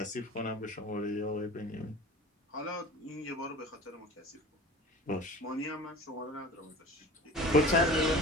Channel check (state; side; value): normal; both; correlation 0.40